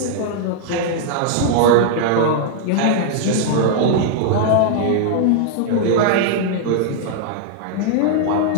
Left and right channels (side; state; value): both; different; correlation -0.01